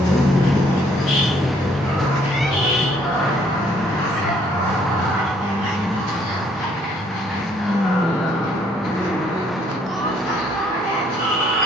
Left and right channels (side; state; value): both; normal; correlation 0.65